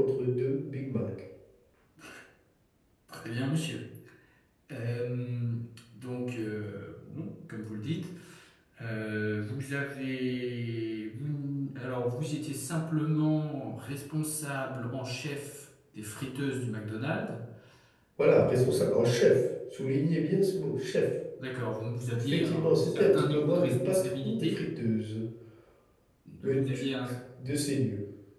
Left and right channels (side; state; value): both; identical; correlation 1.00